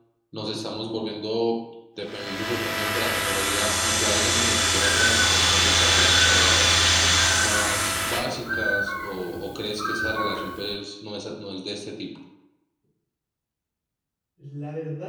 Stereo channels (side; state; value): both; identical; correlation 1.00